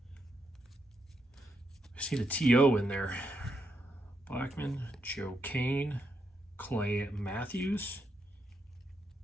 I see the TO in there. Blackman, Joe Kane, Clay Matthews,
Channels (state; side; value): normal; both; correlation 0.81